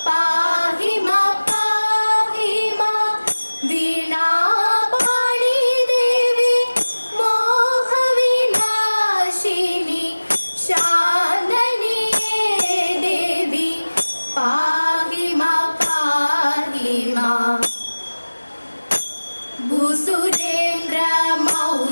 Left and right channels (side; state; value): both; inverted; correlation -1.00